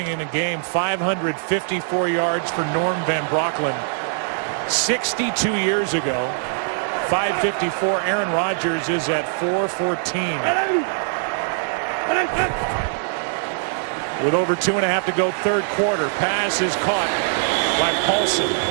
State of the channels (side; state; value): left; silent; 64 dB below the other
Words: in a game, 554 yards for Norm Van Brocklin 62 years ago. 554. Aaron Rodgers is at 414. With over 2.5 to go, third quarter. Pass is caught by Paulson.